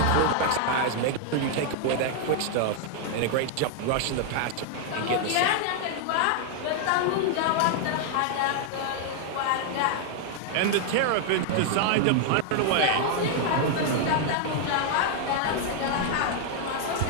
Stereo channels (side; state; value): both; different; correlation 0.00